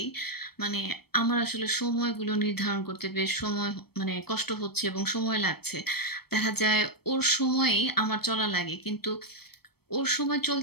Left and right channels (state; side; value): late; right; 0.96 ms